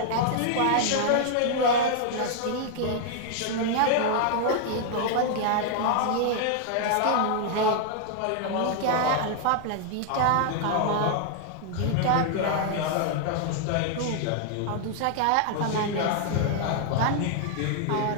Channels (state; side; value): different; both; correlation 0.00